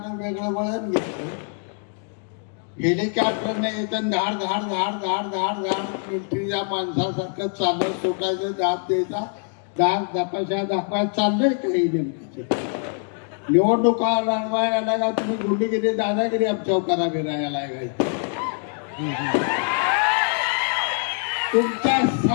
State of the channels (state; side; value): silent; right; 56 dB below the other